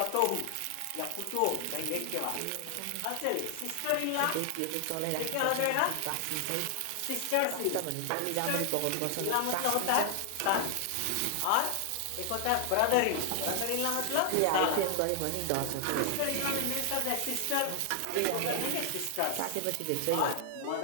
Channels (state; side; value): different; both; correlation 0.00